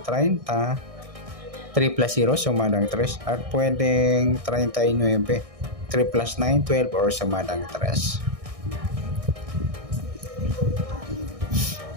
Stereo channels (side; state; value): left; late; 1.6 ms